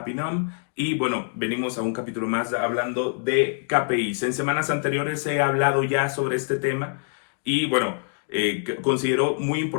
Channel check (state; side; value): silent; right; digital silence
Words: Nom y bueno, venimos a un capítulo más hablando de KPIs. En semanas anteriores he hablado ya sobre este tema y bueno, considero muy